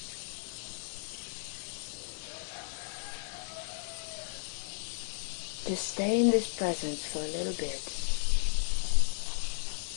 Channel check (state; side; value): silent; right; 55 dB below the other